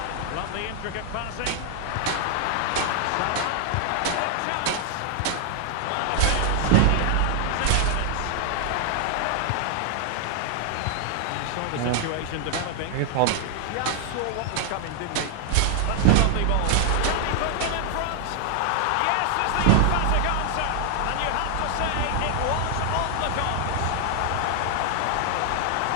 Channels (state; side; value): different; both; correlation 0.00